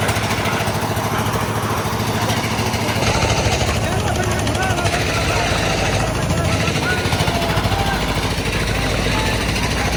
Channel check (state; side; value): identical; both; correlation 1.00